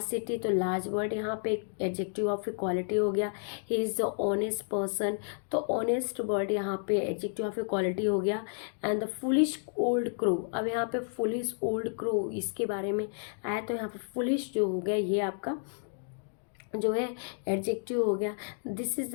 city, तो लार्ज वर्ड यहाँ पे एडजेक्टिव ऑफ ए क्वालिटी हो गया। He is the honest person, तो ऑनेस्ट वर्ड यहाँ पे एडजेक्टिव ऑफ ए क्वालिटी हो गया। And the foolish old crow, अब यहाँ पे फुलिश ओल्ड क्रो इसके बारे में आया, तो यहाँ पे फुलिश जो हो गया ये आपका जो है एडजेक्टिव हो गया। This is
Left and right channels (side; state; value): right; silent; 57 dB below the other